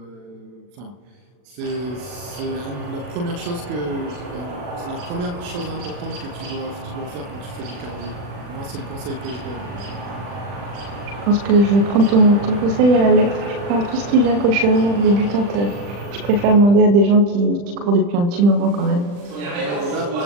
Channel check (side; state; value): left; late; 40 ms